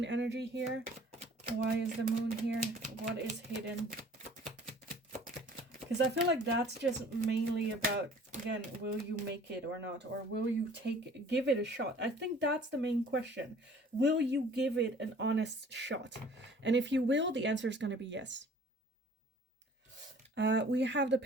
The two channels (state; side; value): normal; both; correlation 0.51